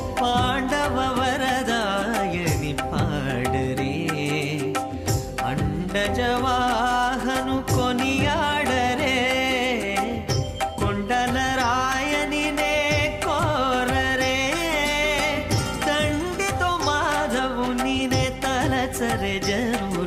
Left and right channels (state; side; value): identical; both; correlation 1.00